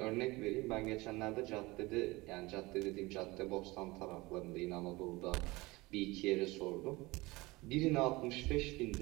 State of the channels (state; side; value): quieter; left; 22.0 dB